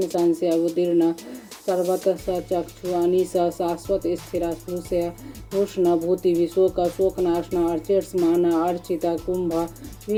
संशय अवतीर्ण सर्वत सचक्षु अनिश शाश्वत स्थिर भूषय भूषण भूति विशोक शोकनाशन अर्चिष्मान अर्चित कुंभ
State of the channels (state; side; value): identical; both; correlation 1.00